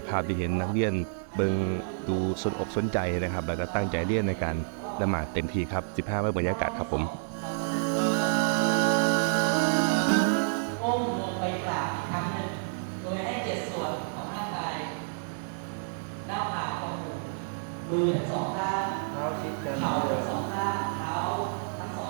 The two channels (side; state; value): left; silent; digital silence